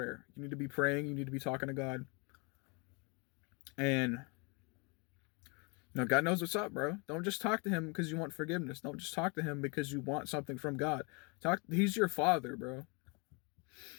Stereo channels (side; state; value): right; quieter; 31.4 dB